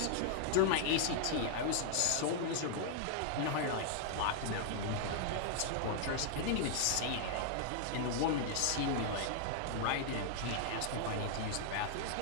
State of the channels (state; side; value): different; both; correlation -0.01